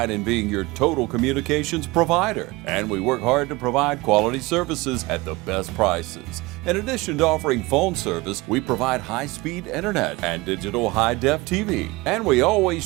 in being your total communications provider, and we work hard to provide quality services at the best prices. In addition to offering phone service, we provide high-speed internet and digital high-def TV. And we always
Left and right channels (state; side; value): quieter; left; 22.3 dB